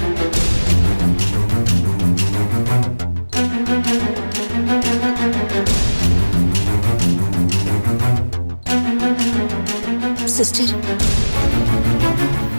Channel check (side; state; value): both; inverted; correlation -1.00